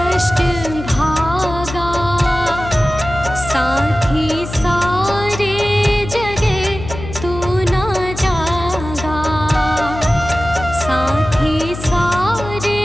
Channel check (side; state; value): left; noise; hum, 10 dB below the sound